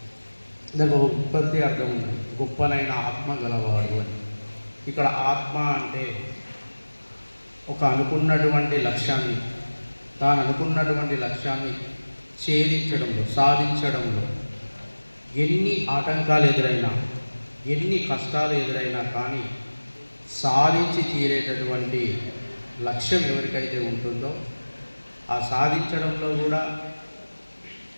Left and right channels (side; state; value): both; inverted; correlation -1.00